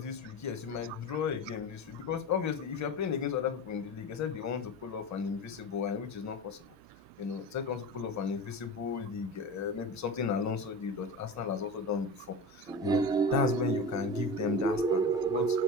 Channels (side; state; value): right; noise; hum, 28 dB below the sound